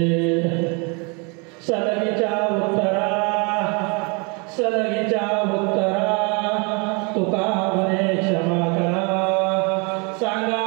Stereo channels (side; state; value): left; quieter; 32.5 dB